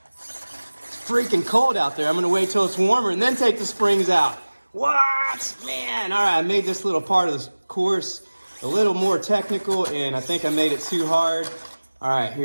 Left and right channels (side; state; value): both; inverted; correlation -1.00